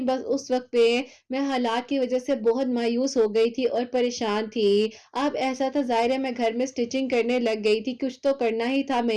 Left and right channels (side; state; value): both; identical; correlation 1.00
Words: بس اس وقت پہ میں حالات کی وجہ سے بہت مایوس ہو گئی تھی اور پریشان تھی. اب ایسا تھا, ظاہر ہے میں گھر میں سٹیچنگ کرنے لگ گئی تھی, کچھ تو کرنا ہی تھا